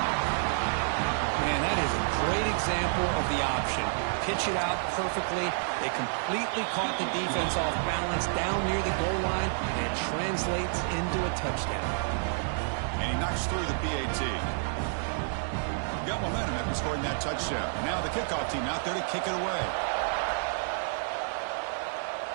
Man, that is a great example of the option. Pitch it out perfectly. They completely caught the defense off balance down near the goal line, and it translates into a touchdown. And he knocks through the PAT. Got momentum after scoring that touchdown. Now the kickoff team out there to kick it away.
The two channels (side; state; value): left; silent; digital silence